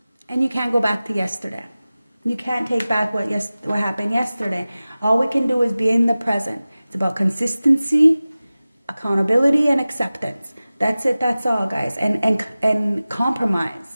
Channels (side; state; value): both; inverted; correlation -0.97